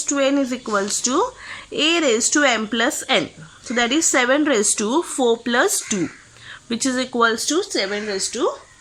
to N is equals to A raised to M plus N. So that is 7 raised to 4 plus 2, which is equals to 7 raised to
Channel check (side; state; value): both; identical; correlation 1.00